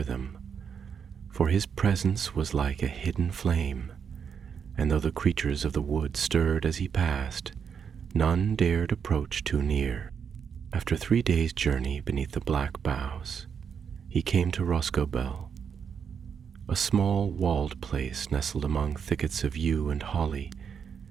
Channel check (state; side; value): quieter; left; 7.0 dB